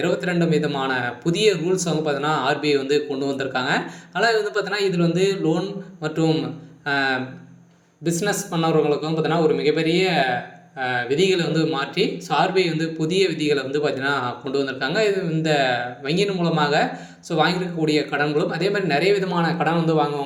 விதமான புதிய ரூல்ஸ் வந்து பார்த்தீங்கன்னா ஆர்பிஐ வந்து கொண்டு வந்திருக்காங்க. ஆனால் வந்து பார்த்தீங்கன்னா இதில் வந்து லோன் மற்றும் பிஸ்னஸ் பண்ணவர்களுக்கும் பார்த்தீங்கன்னா ஒரு மிகப்பெரிய விதிகளை வந்து மாற்றி ஆர்பிஐ வந்து புதிய விதிகளை வந்து பார்த்தீங்கன்னா கொண்டு வந்திருக்காங்க. இது இந்த வங்கியின் மூலமாக வாங்கியிருக்கக்கூடிய கடன்களும் அதே மாதிரி நிறைய விதமான கடன் வந்து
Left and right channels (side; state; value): both; identical; correlation 1.00